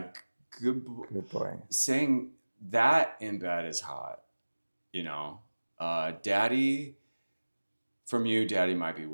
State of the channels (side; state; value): both; inverted; correlation -1.00